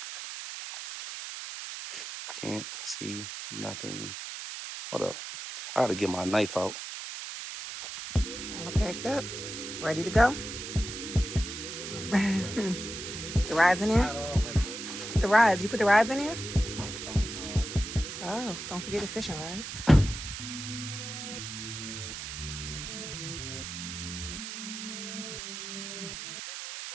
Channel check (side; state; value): right; noise; hiss, 8 dB below the sound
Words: Can't see nothing. Hold up. I gotta get my knife out. All packed up, ready to go. The rides in there? The rides. You put the rides in there? Oh, don't forget the fishing rides.